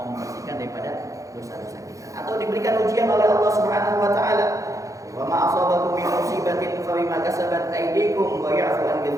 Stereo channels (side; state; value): left; late; 0.16 ms